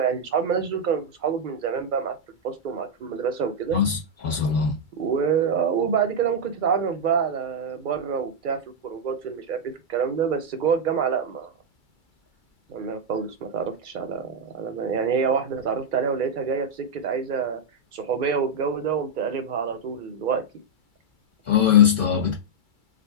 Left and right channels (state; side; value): late; left; 2.3 ms